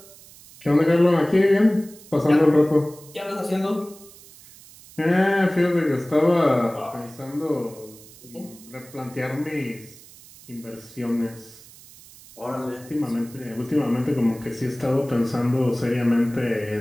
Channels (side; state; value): right; noise; hiss, 21 dB below the sound